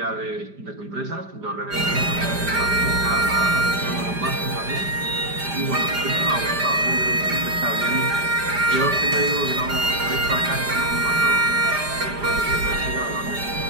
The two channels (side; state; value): left; late; 5.0 ms